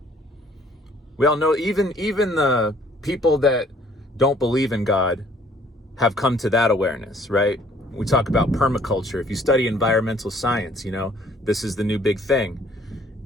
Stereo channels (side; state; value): both; normal; correlation 0.59